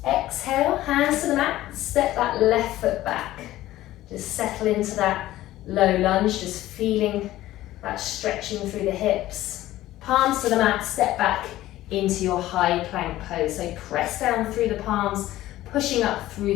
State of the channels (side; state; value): right; quieter; 15.2 dB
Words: Exhale, hands to the mat, step that left foot back. Just settle into that low lunge, just feeling that stretching through the hips. Palms to the mat, step back into your high plank pose. So press down through the palms, pushing up through